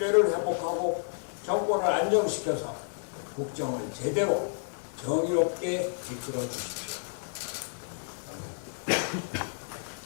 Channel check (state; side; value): silent; right; digital silence